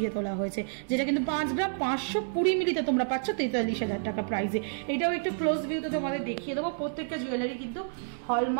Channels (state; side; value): silent; left; digital silence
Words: তোলা হয়েছে, যেটা কিন্তু 5 গ্রাম 520 মিলিতে তোমরা পাচ্ছ 43,000 টাকা প্রাইসে। এটাও একটু ক্লোজ ভিউতে তোমাদের দেখিয়ে দেবো। প্রত্যেকটা জুয়েলারি কিন্তু